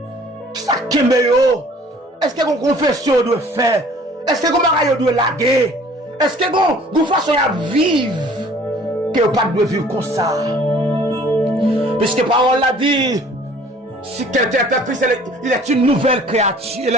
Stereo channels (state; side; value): normal; both; correlation 0.52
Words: Qui ça kembe yo? Est-ce que vous confession doit faire? Est-ce que vous mariage doit laguer? Est-ce que vous façon à vivre? Que vous pas de vivre comme ça. Puisque parole l'a dit, si quelqu'un est en Christ, il est une nouvelle créature. Et